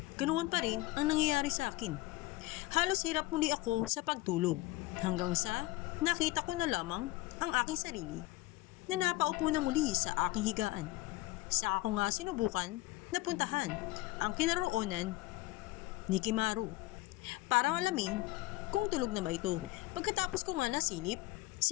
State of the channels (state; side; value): quieter; right; 19.1 dB